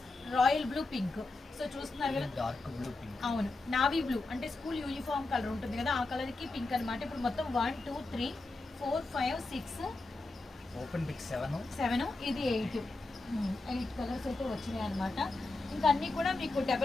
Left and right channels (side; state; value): right; quieter; 3.2 dB